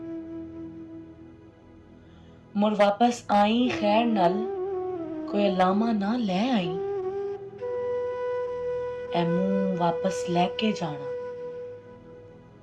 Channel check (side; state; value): both; identical; correlation 1.00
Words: मुड़ वापस आई खैर नाल, कोई लामा ना ले आई। ए मुंह वापस लैके जाना,